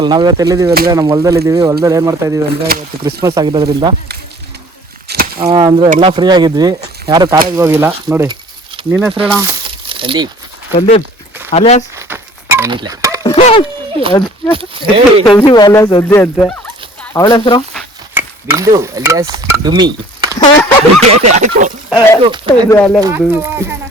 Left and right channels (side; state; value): both; normal; correlation 0.50